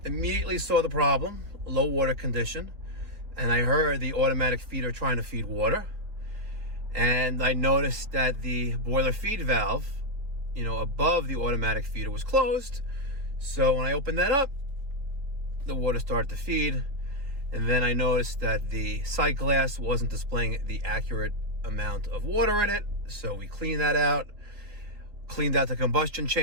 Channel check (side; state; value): left; late; 4.0 ms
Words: immediately saw the problem, low water condition, and I heard the automatic feeder trying to feed water. And I noticed that the boiler feed valve, above the automatic feeder was closed. So when I opened that up, the water started to feed. And then I noticed that the sight glass wasn't displaying the accurate amount of water in it. So we cleaned that out, cleaned out the combustion